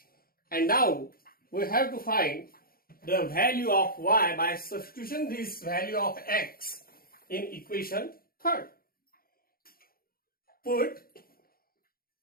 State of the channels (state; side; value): late; right; 0.43 ms